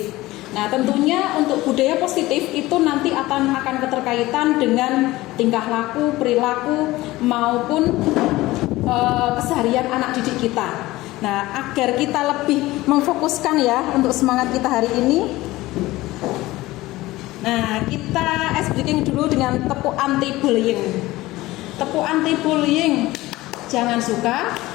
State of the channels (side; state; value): right; quieter; 18.3 dB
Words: Nah, tentunya untuk budaya positif itu nanti akan keterkaitan dengan tingkah laku, perilaku maupun keseharian anak didik kita. Nah, agar kita lebih memfokuskan ya untuk semangat kita hari ini. Nah, kita ice breaking dulu dengan tepuk anti bullying. Tepuk anti bullying: jangan suka